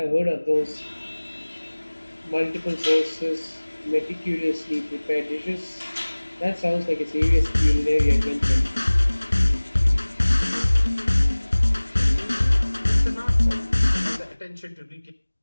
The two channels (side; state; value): both; inverted; correlation -1.00